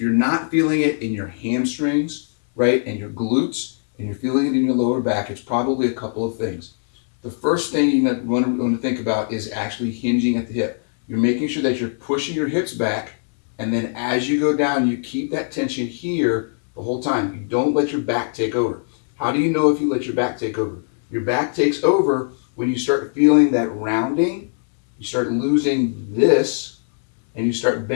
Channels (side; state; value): right; silent; digital silence